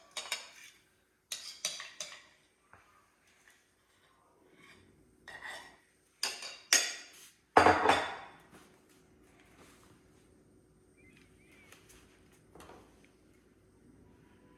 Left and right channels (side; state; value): both; identical; correlation 1.00